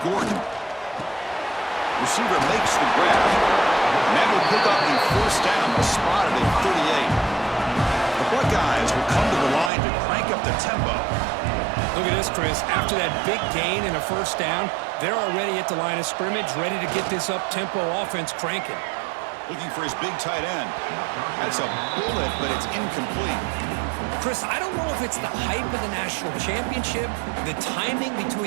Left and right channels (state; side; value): drops out; left; at 9.7 s